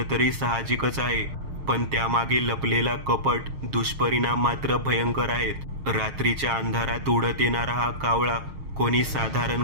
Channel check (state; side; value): late; left; 6.5 ms